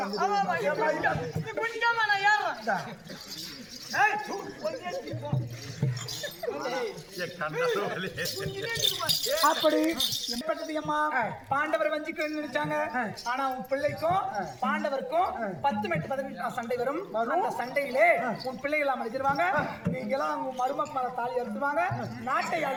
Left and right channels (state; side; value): identical; both; correlation 1.00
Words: அப்படி அம்மா பாண்டவர் வஞ்சிக்க நினைச்சாங்க ஆனா உன் பிள்ளைக்கும் பாண்டவருக்கும் 10 மெட்டு 15 சண்டை வரும் அந்த சண்டையிலே உன் பிள்ளைகள் அடிச்சிருவாங்க நீங்க எல்லாம் உங்க மருமக்கள தாலி அறுத்துவாங்க நாட்டை